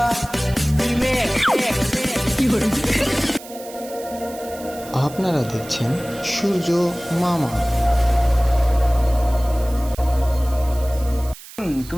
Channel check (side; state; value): right; noise; hiss, 17 dB below the sound